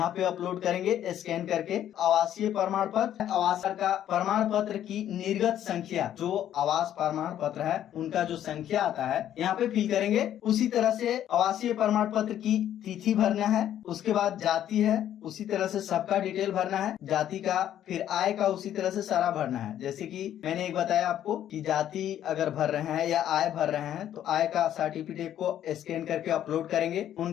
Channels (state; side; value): quieter; right; 11.1 dB